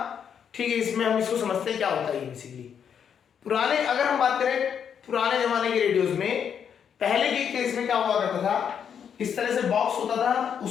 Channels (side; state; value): right; quieter; 7.8 dB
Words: ठीक है, इसमें हम इसको समझते हैं क्या होता है। बेसिकली पुराने, अगर हम बात करें पुराने जमाने के रेडियोज में, पहले के केस में क्या हुआ करता था, इस तरह से बॉक्स होता था,